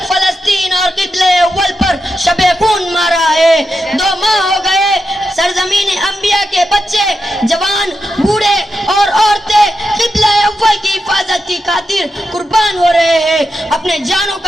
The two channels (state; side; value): normal; both; correlation 0.87